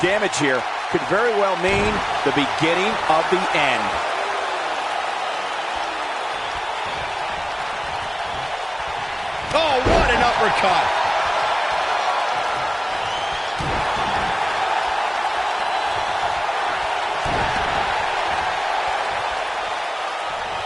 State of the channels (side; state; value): both; identical; correlation 1.00